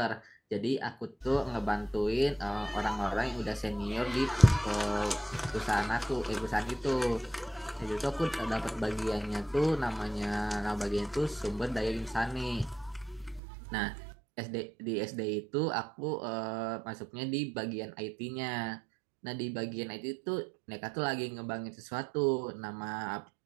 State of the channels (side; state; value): left; drops out; at 13.4 s